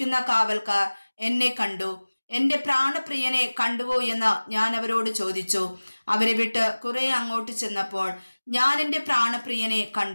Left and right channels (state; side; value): inverted; both; correlation -1.00